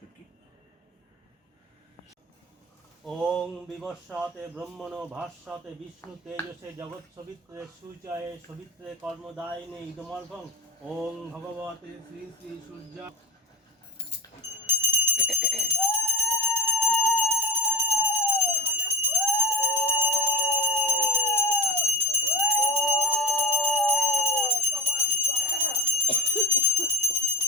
ওং বিবস্বাতে ব্রহ্মণো ভাস্বাতে বিষ্ণু তেজসে জগৎ সবিত্রে সূর্যায়ে সবিত্রে কর্মদায়িনে ইদমর্ভং ওং ভগবতে শ্রী শ্রী সূর্য।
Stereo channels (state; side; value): normal; both; correlation 0.24